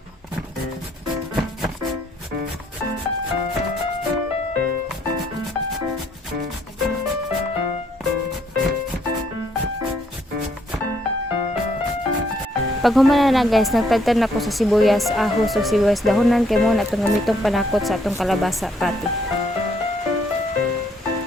Pag humana na guys, nagtagtan ako sa sibuyas, ahos o sibuyas dahonan kay mo na itong gamitong panakot sa atong kalabasa patty.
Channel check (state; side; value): normal; both; correlation 0.69